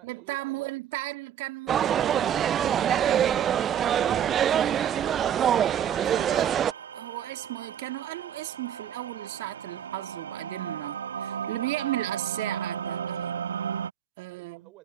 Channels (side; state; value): left; quieter; 9.7 dB